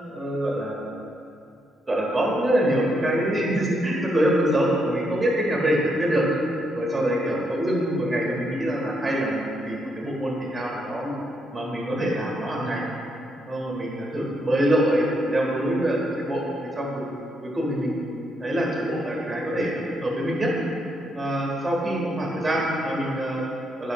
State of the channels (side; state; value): both; normal; correlation 0.78